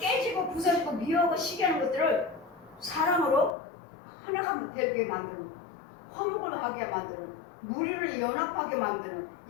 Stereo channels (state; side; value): drops out; right; at 3.6 s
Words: 부서지고 미워하고 시기하는 것들을 사랑으로 하나가 되게 만드는 화목을 하게 만드는 무리를 연합하게 만드는